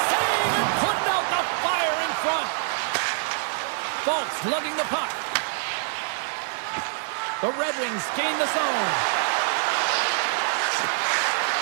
save and putting out the fire in front. Fultz lugging the puck. The Red Wings gain the zone.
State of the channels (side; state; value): left; silent; digital silence